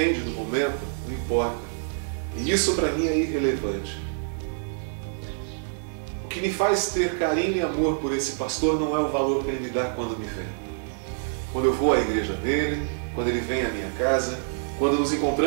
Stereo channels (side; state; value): left; silent; digital silence